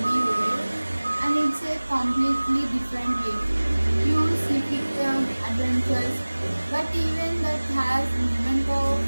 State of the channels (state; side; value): inverted; both; correlation -1.00